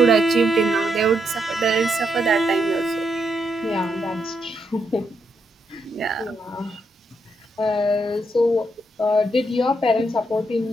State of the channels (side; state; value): both; normal; correlation 0.79